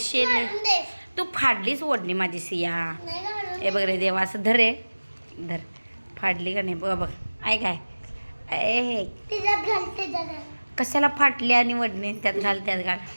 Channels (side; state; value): both; inverted; correlation -1.00